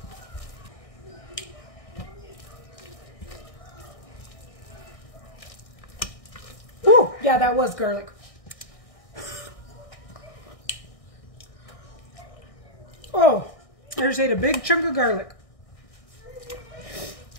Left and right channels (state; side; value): late; right; 1.6 ms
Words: Yeah, that was garlic. Oh, I just ate a big chunk of garlic.